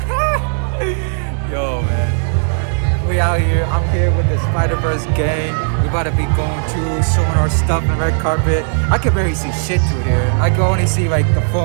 Yo, man. We out here. I'm here with the Spider-Verse gang. We about to be going to, showing our stuff in the red carpet. I can barely see shit through here. I can only see like the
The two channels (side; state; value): left; silent; 64 dB below the other